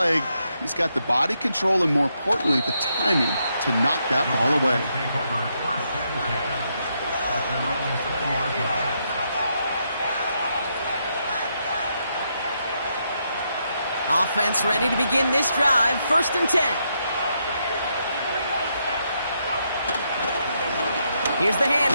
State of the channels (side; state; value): both; inverted; correlation -0.79